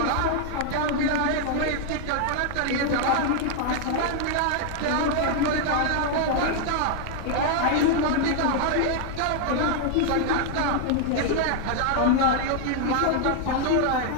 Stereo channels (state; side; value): different; both; correlation 0.00